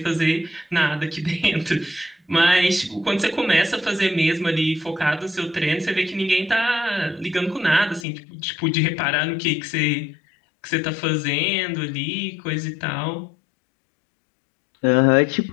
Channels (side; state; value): right; drops out; at 8.1 s